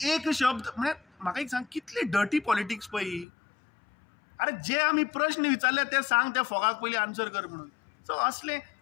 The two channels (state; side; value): drops out; right; at 3.2 s